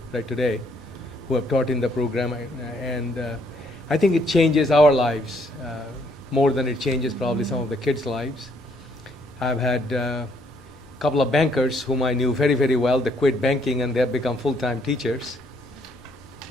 right today, who have taught in the program. And I think it changes our lives more than it changes probably some of the kids' lives. I've had a couple of bankers whom I knew very, very well. They quit banking and they have become full-time teachers.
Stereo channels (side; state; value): both; normal; correlation 0.69